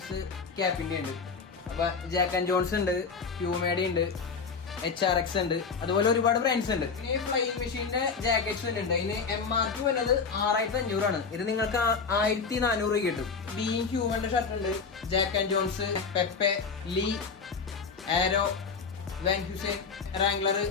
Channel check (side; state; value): right; quieter; 5.3 dB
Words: ക്യാപ്പിന്റെ ഉണ്ട്. അപ്പൊ ജാക്ക് ആൻഡ് ജോൺസ് ഉണ്ട്, പ്യൂമേഡി ഉണ്ട്, HRX ഉണ്ട്, അതുപോലെ ഒരുപാട് ബ്രാൻഡ്സ് ഉണ്ട്. ഇനി ഫ്ലൈയിങ് മെഷീന്റെ ജാക്കറ്റ്സ് ഉണ്ട്. ഇതിന് MRP വരുന്നത് 6500 ഇത് നിങ്ങൾക്ക് 1400 കിട്ടും. ബീങ് ഹ്യൂമന്റെ ഷർട്ട് ഉണ്ട്, Jack and Jones, Pepe, Lee, Arrow, Van Heusen, Wrangler,